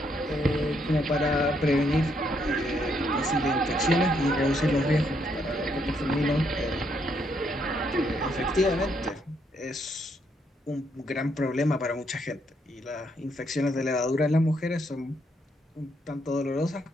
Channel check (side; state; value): both; normal; correlation 0.74